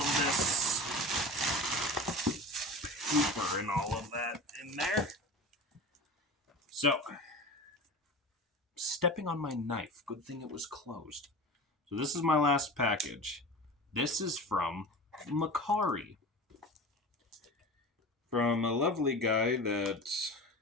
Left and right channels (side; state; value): both; normal; correlation 0.32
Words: this paper and all of that in there. So, stepping on my knife. Good thing it was closed. So this is my last package. This is from Makari. From a lovely guy that